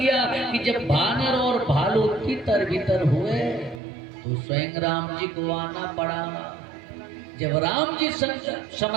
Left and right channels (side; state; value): left; drops out; at 3.8 s